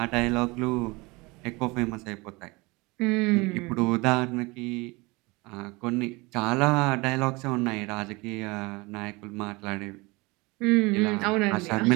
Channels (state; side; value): quieter; left; 24.6 dB